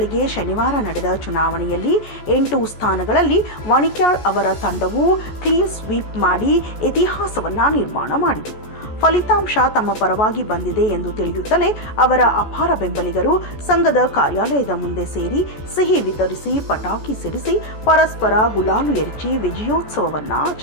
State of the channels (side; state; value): right; late; 14 ms